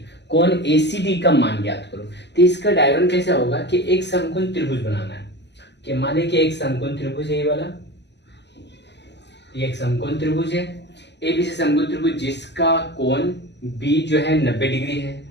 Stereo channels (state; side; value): late; right; 0.50 ms